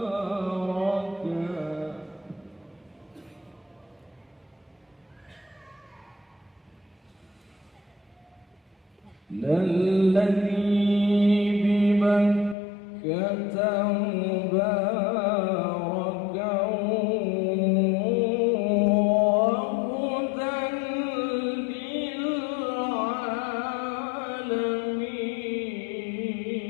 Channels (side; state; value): right; drops out; at 12.6 s